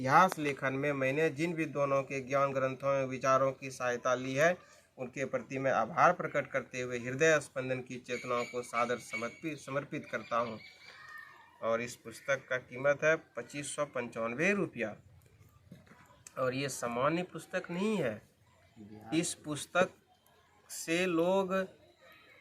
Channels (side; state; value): both; identical; correlation 1.00